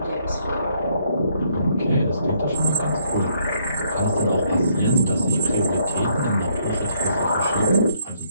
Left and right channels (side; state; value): both; inverted; correlation -0.69